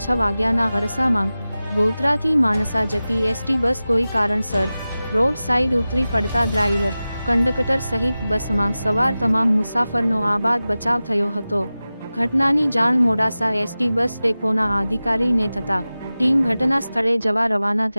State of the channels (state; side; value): inverted; both; correlation -0.96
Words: 6 વાગ્યાના અરસામાં ગોધરાથી માણસા જતી એસટી બસ કોઈ કારણસર રોડ સાઈડ ઉતરી પડતા ડ્રાઈવર, કંડક્ટર સહિત બસમાં સવાર તમામ મુસાફરનો આબાદ બચાવ થયો હતો। ઘટનાની જાણ મોડાસા એસટી બસ ડેપોના અધિકારીને થતાં ટીમ ઘટના સ્થળે જવા રવાના